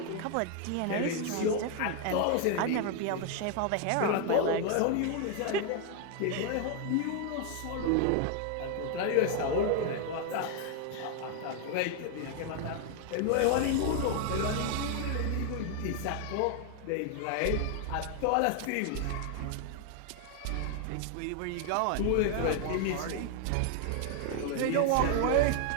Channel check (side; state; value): both; different; correlation 0.00